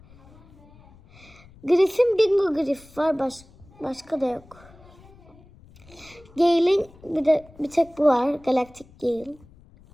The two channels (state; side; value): noise; left; rumble, 25 dB below the sound